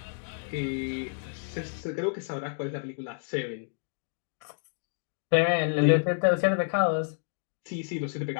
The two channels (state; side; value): silent; right; digital silence